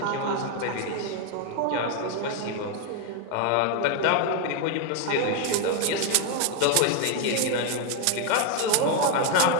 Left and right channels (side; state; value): both; different; correlation 0.01